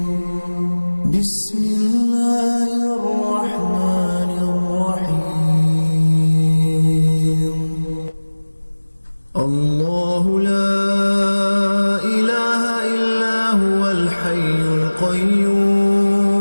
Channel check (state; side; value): inverted; both; correlation -1.00